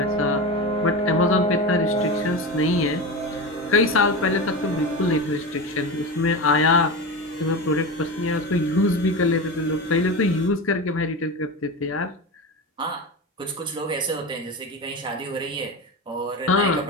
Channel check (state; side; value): normal; both; correlation 0.23